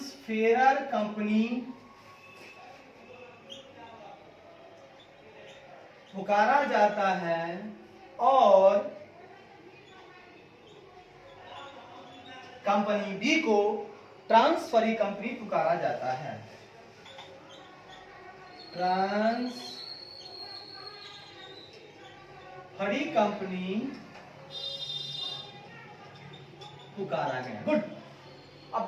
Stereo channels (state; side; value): identical; both; correlation 1.00